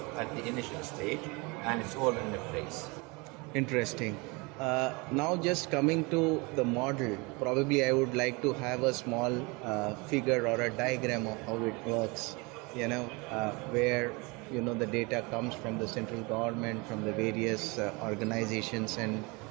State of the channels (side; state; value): left; quieter; 27.4 dB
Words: at the initial stage, and it's all in place. Interesting. Now just coming to the model, probably I would like to have a small figure or a diagram of how it works, where the data comes from the central government, from the various organizations and